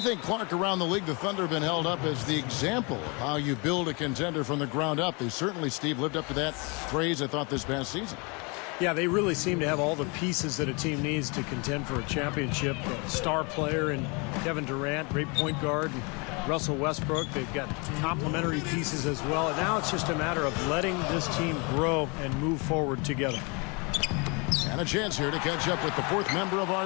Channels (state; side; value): quieter; right; 30.8 dB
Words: Clark, around the league, the Thunder have been held up as the example of how you build a contender from the ground up. They certainly, Steve, lived up to that phrase, I thought, this past season. Yeah, they really seem to have all the pieces that a team needs to contend for a championship. A star player in Kevin Durant, great point guard, and Russell Westbrook. They've got complementary pieces as well. And now it's just a matter of letting this team grow and move forward together. And a chance here to catch up with the fourth member of